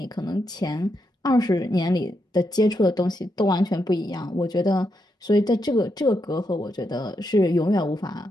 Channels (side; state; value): both; normal; correlation 0.82